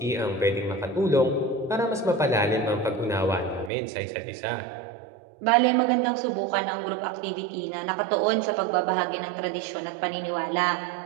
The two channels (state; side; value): drops out; left; at 3.7 s